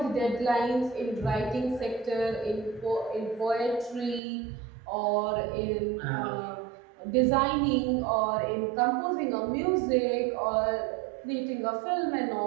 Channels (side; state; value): left; drops out; at 4.2 s